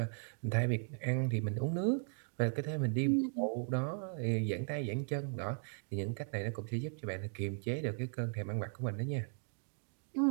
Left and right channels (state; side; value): silent; left; 53 dB below the other